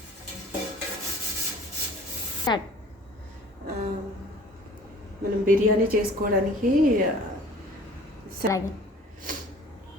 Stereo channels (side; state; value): both; normal; correlation 0.48